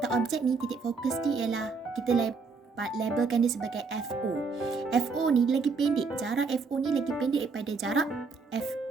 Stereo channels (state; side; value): quieter; left; 4.6 dB